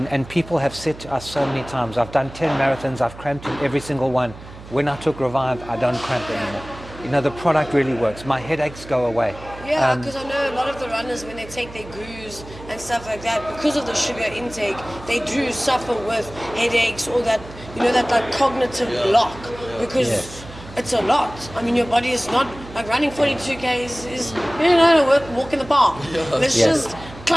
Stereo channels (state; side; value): noise; right; hum, 16 dB below the sound